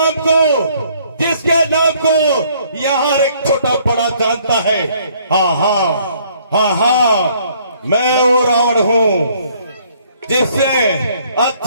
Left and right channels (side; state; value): both; inverted; correlation -0.63